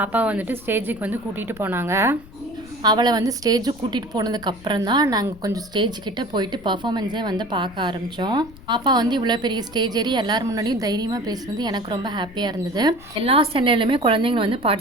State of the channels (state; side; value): noise; left; rumble, 20 dB below the sound